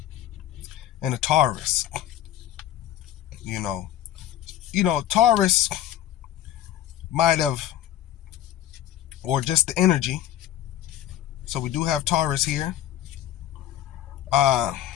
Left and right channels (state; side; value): quieter; right; 12.1 dB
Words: and a Taurus. You know, Taurus might have, or just the energy. So we do have Taurus here.